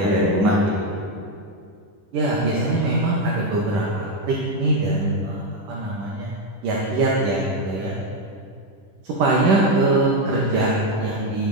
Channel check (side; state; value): left; late; 10 ms